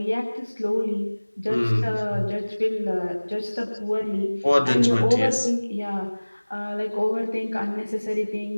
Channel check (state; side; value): inverted; both; correlation -1.00